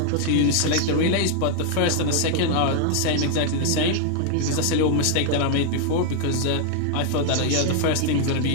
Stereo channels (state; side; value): different; both; correlation 0.00